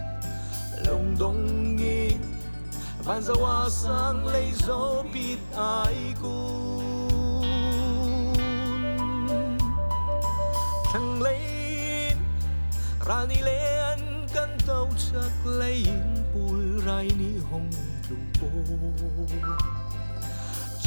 lòng đông nghi van dấu a sang lấy dấu bịt ai cun thằng lấy rani lê ăn cân tàu chắc lấy bùi rai ni hồng lùng bô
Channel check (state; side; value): inverted; both; correlation -1.00